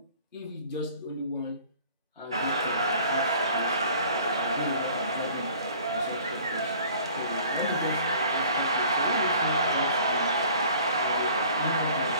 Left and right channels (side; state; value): both; inverted; correlation -0.50